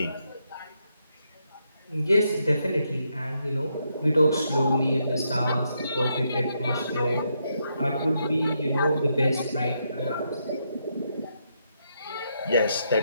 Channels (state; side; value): inverted; both; correlation -0.80